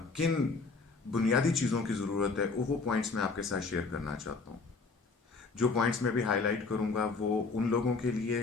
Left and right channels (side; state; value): right; quieter; 4.2 dB